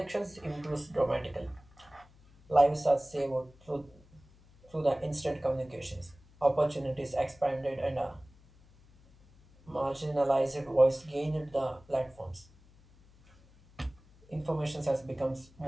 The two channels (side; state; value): left; noise; hum, 27 dB below the sound